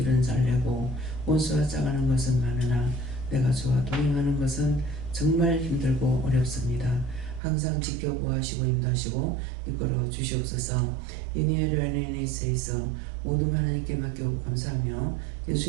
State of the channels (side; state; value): left; drops out; at 7.4 s